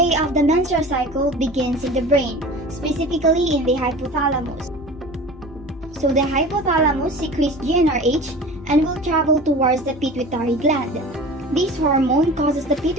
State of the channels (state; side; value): normal; both; correlation 0.38